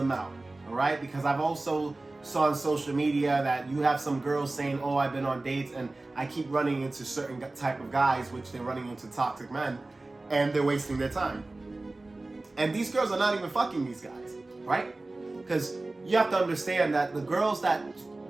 out, all right? Because I've also saw on social media that you have some girls saying, oh, I've been on dates and I keep running into certain type of guys, which they're running into toxic men, and they're wasting their time. And these girls are not even fucking these guys, right? Because you have to understand that the girls that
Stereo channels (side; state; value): left; quieter; 3.0 dB